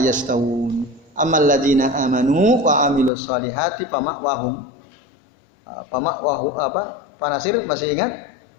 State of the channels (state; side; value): drops out; right; at 3.1 s